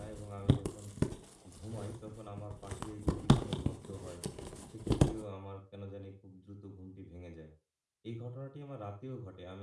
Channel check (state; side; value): identical; both; correlation 1.00